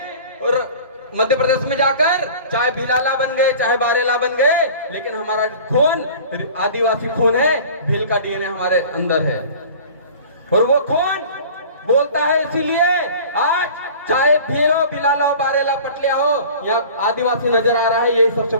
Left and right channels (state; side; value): inverted; both; correlation -0.42